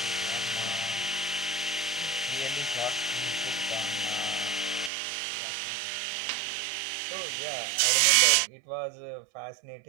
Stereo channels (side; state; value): left; drops out; at 4.9 s